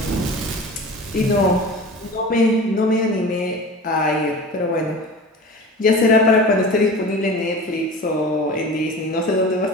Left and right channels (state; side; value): normal; both; correlation 0.35